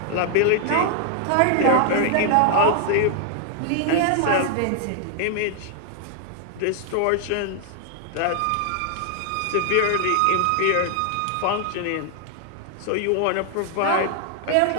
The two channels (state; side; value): different; both; correlation 0.00